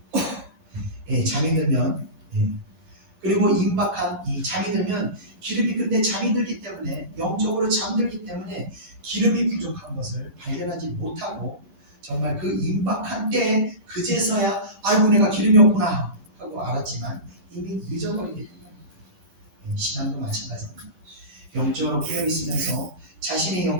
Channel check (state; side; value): late; left; 11 ms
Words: 잠이 들면 그리고 임박한 이 잠이 들면 기름이 근데 잠이 들기 때문에 영적으로 잠들기 때문에 기름이 부족한 것을 발견하지 못하고 정말 그 임박한 때에 그제서야 아이고 내가 기름이 없구나 하고 알았지만 이미 늦어버리게 됩니다. 신앙도 마찬가지입니다. 영적으로 깨어 있으면서 자신의